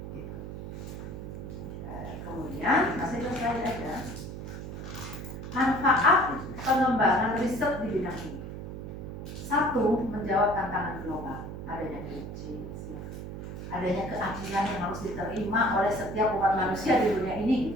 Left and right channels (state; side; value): noise; right; hum, 8 dB below the sound